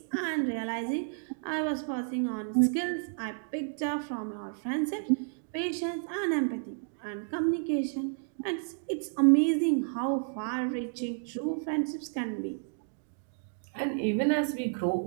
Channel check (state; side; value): silent; left; digital silence